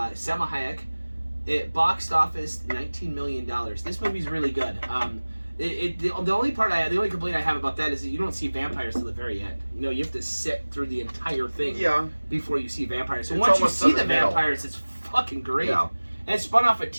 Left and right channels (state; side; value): inverted; both; correlation -1.00